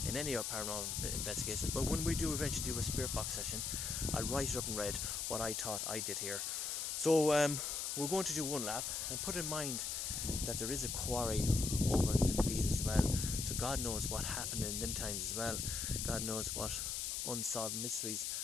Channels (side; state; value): left; noise; hiss, 2 dB below the sound